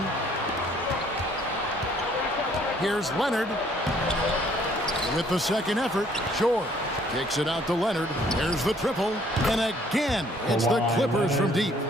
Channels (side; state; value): both; normal; correlation 0.61